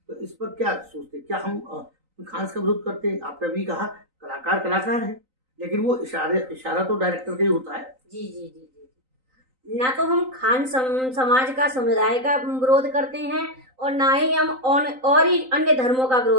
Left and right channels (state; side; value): late; left; 3.9 ms